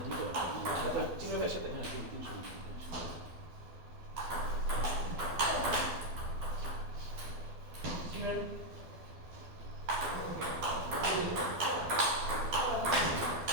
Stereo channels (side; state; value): left; late; 12 ms